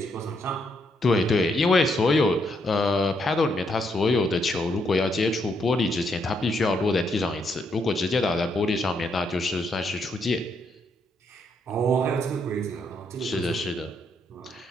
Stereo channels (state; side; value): normal; both; correlation 0.76